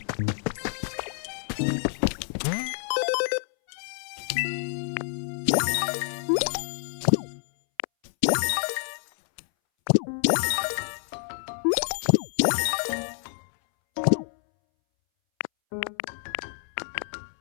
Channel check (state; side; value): silent; right; 59 dB below the other